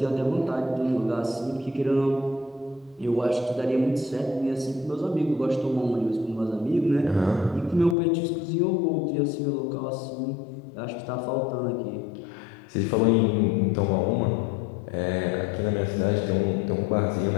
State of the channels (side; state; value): right; drops out; at 8.0 s